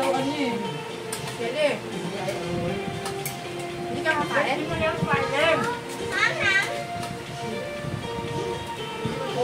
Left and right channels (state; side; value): identical; both; correlation 1.00